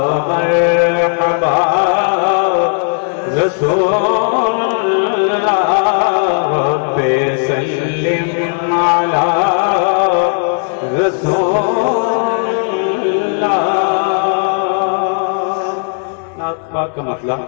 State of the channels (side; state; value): right; silent; 57 dB below the other